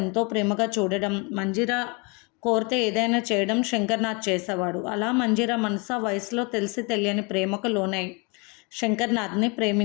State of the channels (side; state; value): right; quieter; 30.7 dB